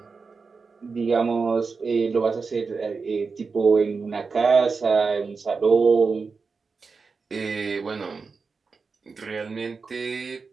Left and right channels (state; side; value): quieter; left; 4.7 dB